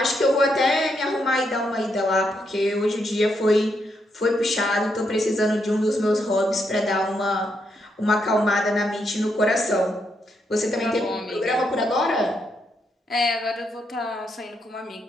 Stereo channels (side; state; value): both; normal; correlation 0.79